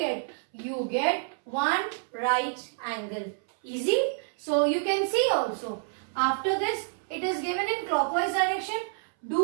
You get 1 right angle. Easy? So you can see also, after this, it is given in clockwise direction. Do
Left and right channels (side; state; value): left; silent; 59 dB below the other